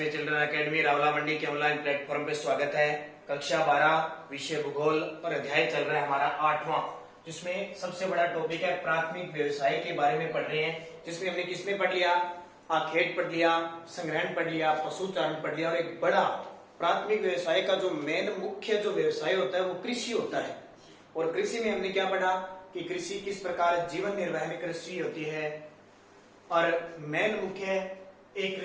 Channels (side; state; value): both; identical; correlation 1.00